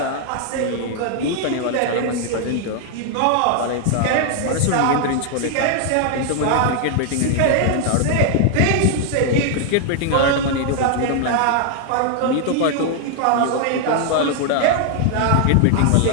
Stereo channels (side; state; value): both; different; correlation 0.00